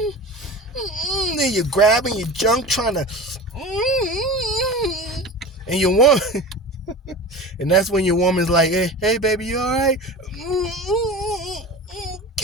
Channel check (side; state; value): both; normal; correlation 0.33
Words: then you're grabbing your junk trying to, and your woman, and that's when your woman's like, hey baby, you all right?